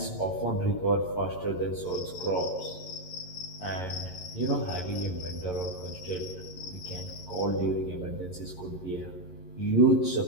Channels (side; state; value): right; late; 11 ms